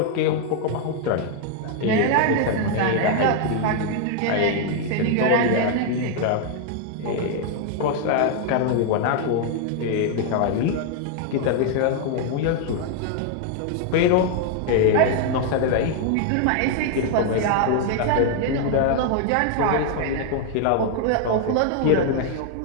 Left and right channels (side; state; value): both; different; correlation 0.00